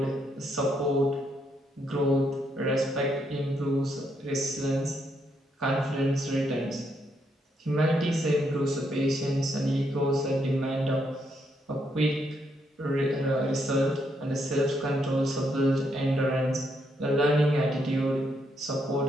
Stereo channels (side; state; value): both; normal; correlation 0.77